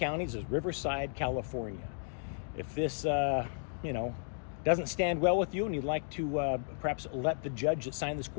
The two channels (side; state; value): right; silent; digital silence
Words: is Riverside, California. If this, doesn't stand well with you and you'd like to perhaps let the judge that signed this